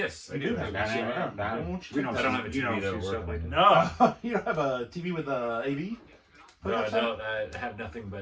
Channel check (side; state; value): both; identical; correlation 1.00